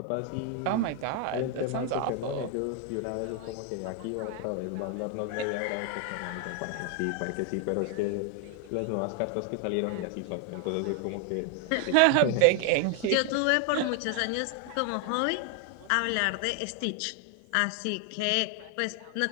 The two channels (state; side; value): different; both; correlation 0.00